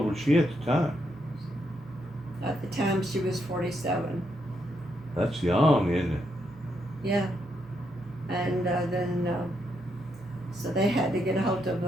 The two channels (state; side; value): normal; both; correlation 0.79